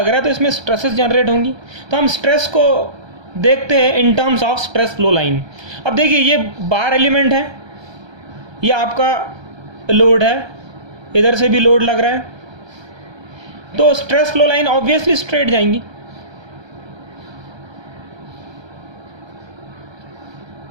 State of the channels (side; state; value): left; late; 1.3 ms